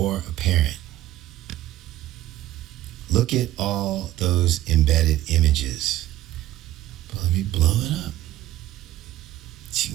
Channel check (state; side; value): quieter; left; 14.7 dB